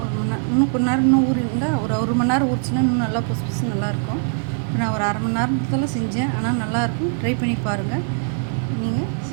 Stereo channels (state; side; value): silent; left; 65 dB below the other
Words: 1 மணி நேரம், இன்னும் கொஞ்ச நேரம் இன்னும் ஊறி இருந்தால் ஒரு மணி நேரம் ஊறிச்சுன்னா இன்னும் நல்லா புதுசு புதுசு நல்லாயிருக்கும். இப்போ நான் ஒரு அரை மணி நேரத்தில் செஞ்சேன். ஆனால் நல்லாயிருக்கும். ட்ரை பண்ணி பாருங்கள். நீங்கள்